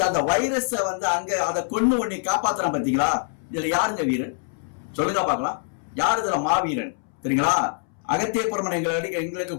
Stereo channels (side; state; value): right; silent; 62 dB below the other